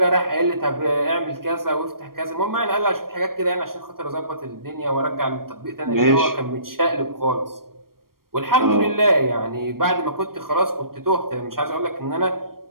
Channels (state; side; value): late; left; 0.92 ms